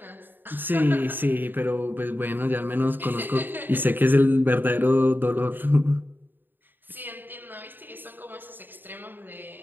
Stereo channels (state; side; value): late; left; 0.093 ms